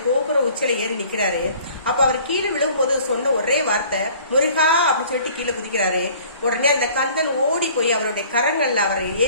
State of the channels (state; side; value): inverted; both; correlation -0.52